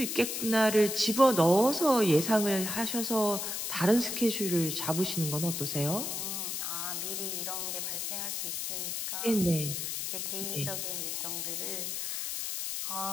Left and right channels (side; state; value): left; noise; hiss, 3 dB below the sound